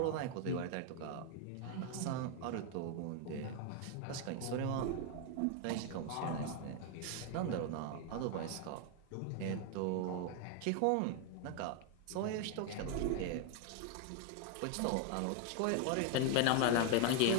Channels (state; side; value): different; both; correlation 0.01